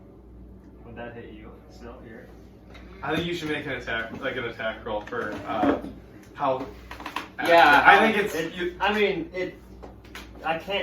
would that hit you? Still here? I think you should make an attack roll for how. Yeah, I think it's. I mean, I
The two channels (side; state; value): both; identical; correlation 1.00